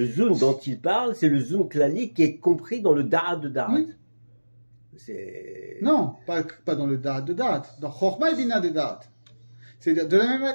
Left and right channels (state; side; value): inverted; both; correlation -1.00